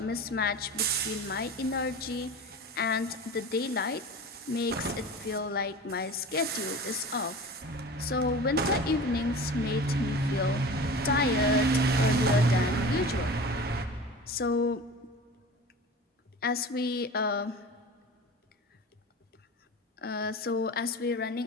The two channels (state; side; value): normal; both; correlation 0.36